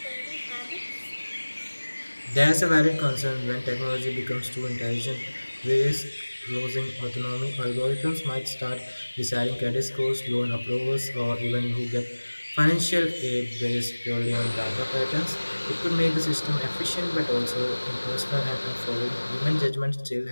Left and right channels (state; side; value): inverted; both; correlation -1.00